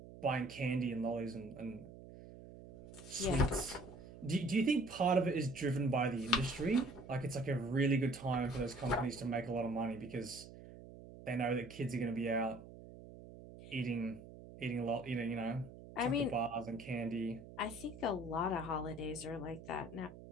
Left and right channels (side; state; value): right; noise; hum, 16 dB below the sound